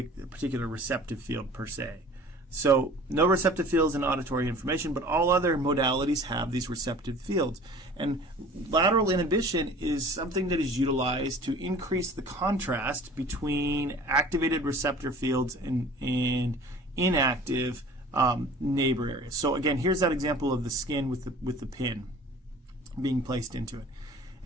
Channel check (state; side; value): normal; both; correlation 0.45